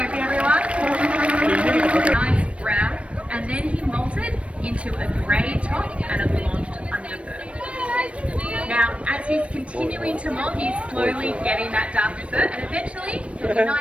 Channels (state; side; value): late; left; 0.062 ms